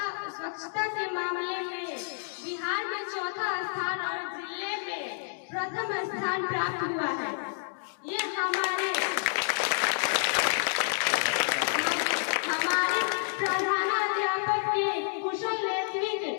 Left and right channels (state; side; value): silent; right; digital silence